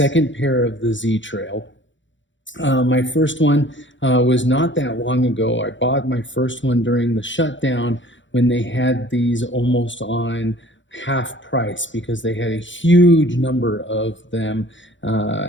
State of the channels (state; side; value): late; right; 0.54 ms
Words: pair of the Z-Trail. My first one was not that long ago. I bought my first one during the shutdown when they had these almost on half price because they had a huge number of them,